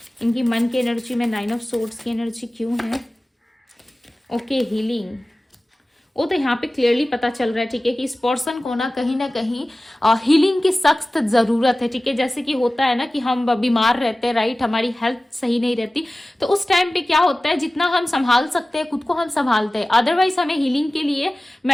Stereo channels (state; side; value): normal; both; correlation 0.97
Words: इनकी मन की एनर्जी में, 9 ऑफ सोर्ड्स की एनर्जी क्यों है। Okay, healing. वो तो यहाँ पे क्लियरली पता चल रहा है। ठीक है, कि इस पर्सन को ना कहीं हीलिंग की सख्त जरूरत है। ठीक है, जैसे कि होता है ना कि हम बीमार रहते हैं, राइट, हमारी हेल्थ सही नहीं रहती, तो उस टाइम पे क्या होता है, जितना हम संभाल सकते हैं खुद को हम संभालते हैं, अदरवाइज हमें हीलिंग के लिए